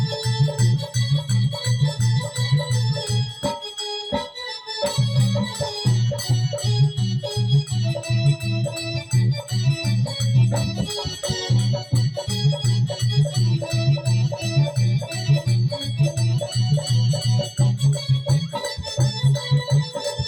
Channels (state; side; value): identical; both; correlation 1.00